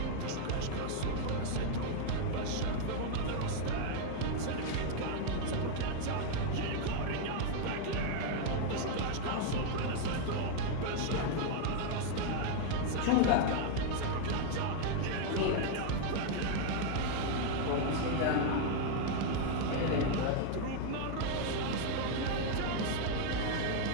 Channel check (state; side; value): different; both; correlation 0.00